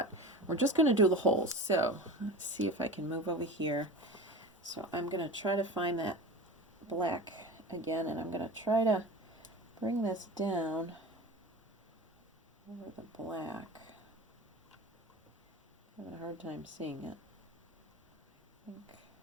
we're just going to do the holes. So let's see if I can move over here. So I'm going to try to find that black again, and I'm going to try to bring this down over the black. I'm having a hard time seeing it. I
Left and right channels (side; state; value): both; normal; correlation 0.32